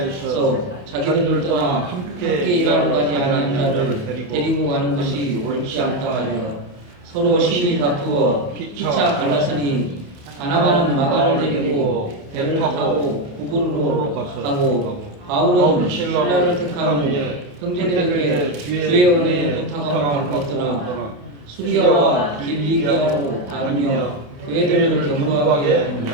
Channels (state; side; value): late; left; 28 ms